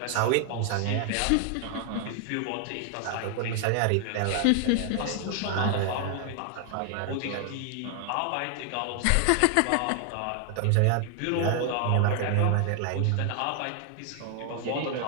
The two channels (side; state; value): both; different; correlation 0.00